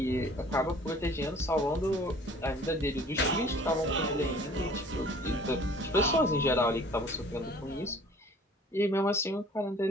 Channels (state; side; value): normal; both; correlation 0.51